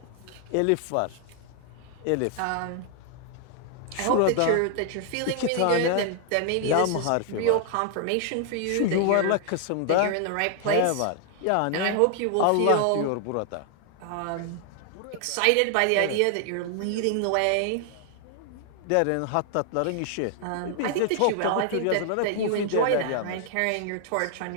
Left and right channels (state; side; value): different; both; correlation 0.00